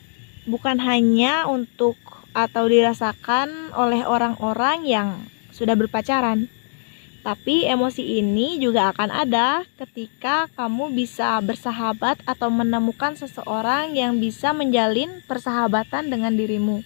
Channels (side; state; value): right; silent; digital silence